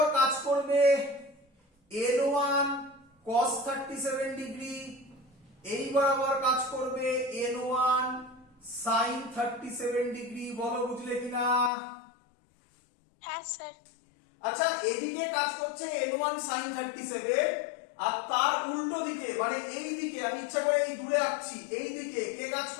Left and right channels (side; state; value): right; drops out; at 11.7 s